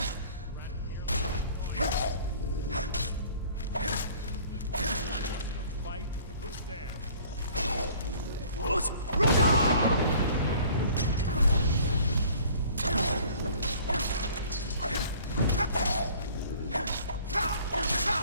Fight. Who's there?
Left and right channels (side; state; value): both; inverted; correlation -0.51